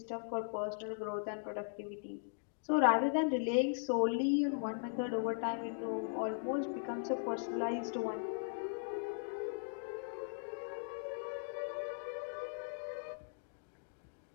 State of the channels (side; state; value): right; silent; digital silence